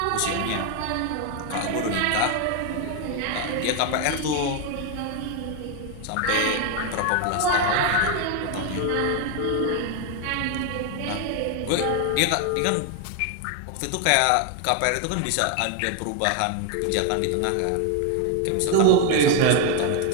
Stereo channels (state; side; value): different; both; correlation 0.01